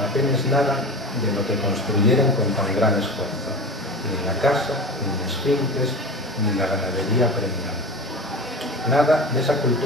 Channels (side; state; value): both; normal; correlation 0.31